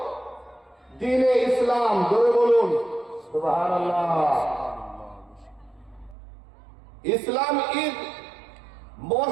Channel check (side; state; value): left; drops out; at 6.2 s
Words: দ্বীনে ইসলাম। জোরে বলুন সুবহানাল্লাহ। Islam is